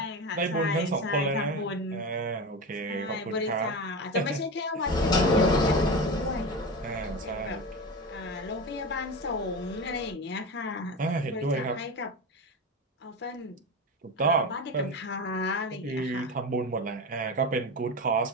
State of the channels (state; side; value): normal; both; correlation 0.23